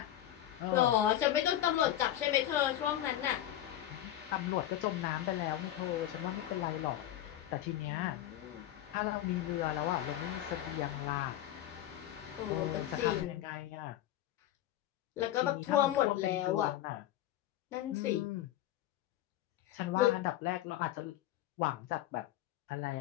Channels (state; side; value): quieter; right; 12.8 dB